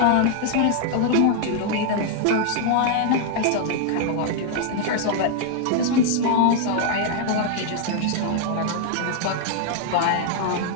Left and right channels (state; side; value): different; both; correlation 0.00